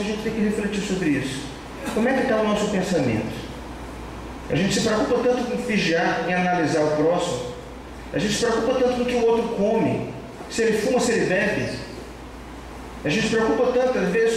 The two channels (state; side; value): identical; both; correlation 1.00